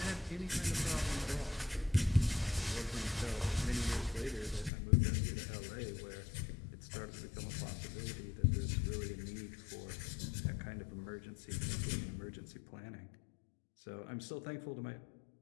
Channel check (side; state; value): right; drops out; at 4.7 s